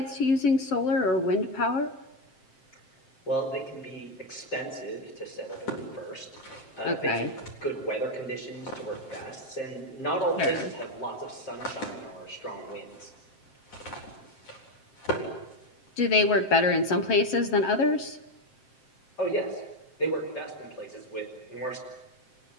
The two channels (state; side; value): late; right; 7.6 ms